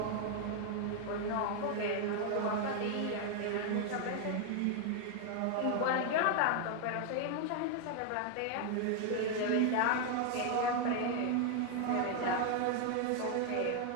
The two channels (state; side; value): different; both; correlation 0.01